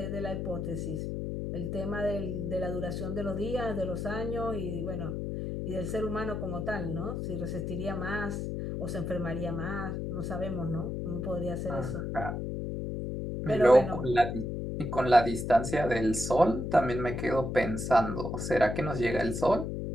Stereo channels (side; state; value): left; noise; hum, 3 dB below the sound